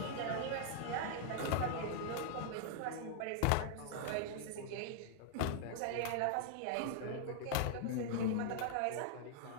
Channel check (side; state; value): both; different; correlation -0.01